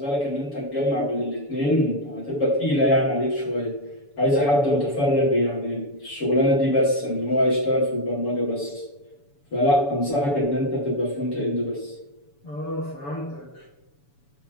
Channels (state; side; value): late; right; 7.0 ms